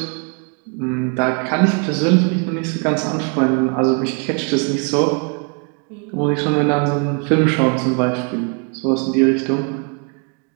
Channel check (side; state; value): left; quieter; 36.6 dB